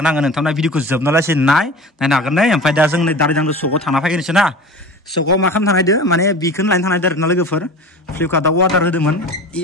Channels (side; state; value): both; normal; correlation 0.35